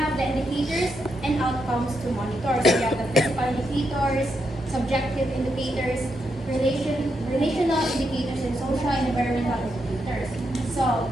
the indicators and outcomes to monitor. So we have the physical indicators, subjective indicators, relational indicators, and social and environmental indicators. So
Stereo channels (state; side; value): normal; both; correlation 0.82